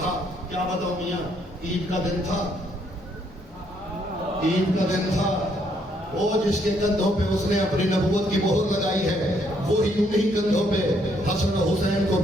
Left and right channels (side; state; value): both; normal; correlation 0.71